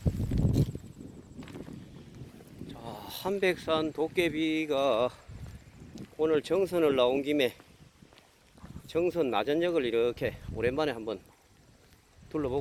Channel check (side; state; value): both; identical; correlation 1.00